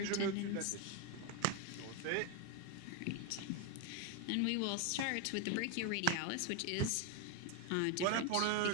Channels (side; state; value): both; different; correlation 0.01